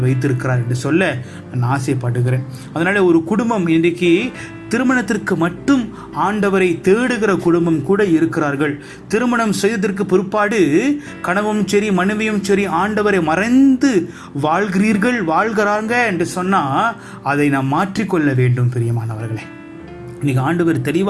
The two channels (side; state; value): both; identical; correlation 1.00